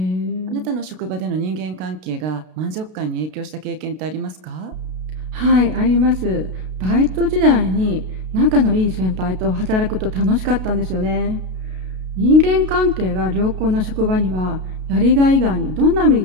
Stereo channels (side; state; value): left; late; 32 ms